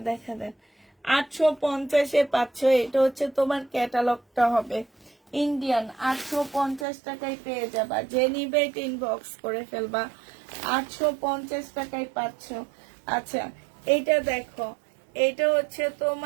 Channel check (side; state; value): left; drops out; at 6.9 s